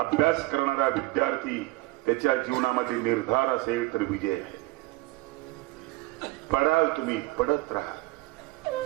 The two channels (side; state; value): left; quieter; 20.3 dB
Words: करणारा विद्यार्थी, त्याच्या जीवनामध्ये निर्धार असेल तर विजय आहे. पडाल तुम्ही, पडत राहा,